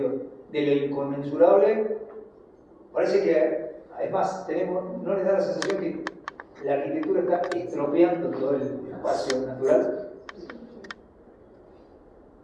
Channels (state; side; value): identical; both; correlation 1.00